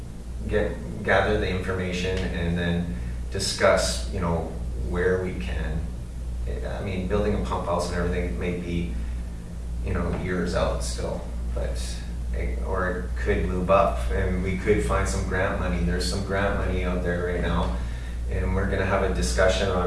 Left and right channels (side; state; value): both; identical; correlation 1.00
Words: gather the information, and then discuss, where we can. I mean, building a pump house and everything may be, years out still, but or it could move up, and we could find some grant money. There's some grant money out there right now, and we're going to have a discussion